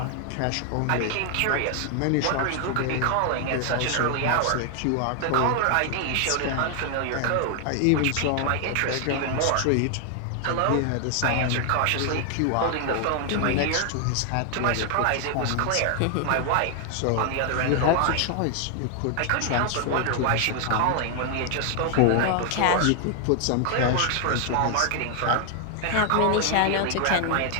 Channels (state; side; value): different; both; correlation 0.00